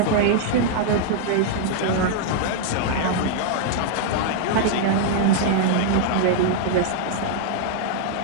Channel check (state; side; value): different; both; correlation -0.01